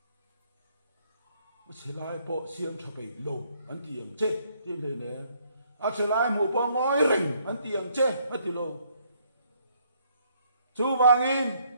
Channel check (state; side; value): inverted; both; correlation -0.68